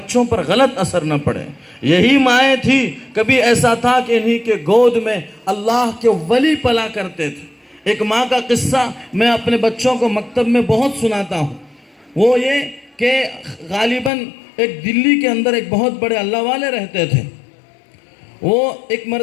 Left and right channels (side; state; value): right; drops out; at 14.1 s